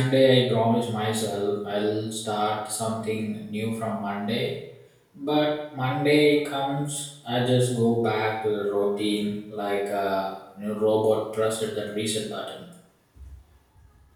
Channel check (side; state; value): both; identical; correlation 1.00